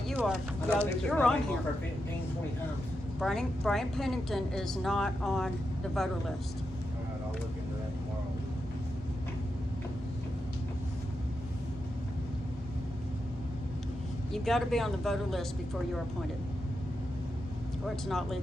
are. I know Yeah, they took you're my on name off here. for 15, 20 times. Brian Pennington is not on the voter list. All right, I'll look into that tomorrow. You've got to be on the voter list before you're appointed, or it's not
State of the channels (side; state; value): both; normal; correlation 0.87